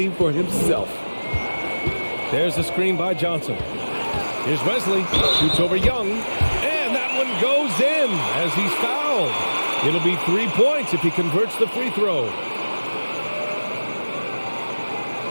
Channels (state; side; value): inverted; both; correlation -1.00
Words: for himself. There's the screen by Johnson. Here's Wesley. Shoots over Young. And that one goes in as he's fouled. It'll be 3 points if he converts the free throw.